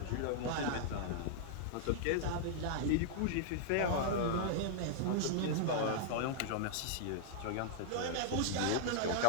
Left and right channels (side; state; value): both; different; correlation -0.01